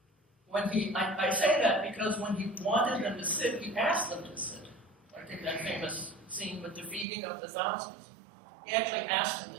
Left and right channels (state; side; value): drops out; left; at 7.1 s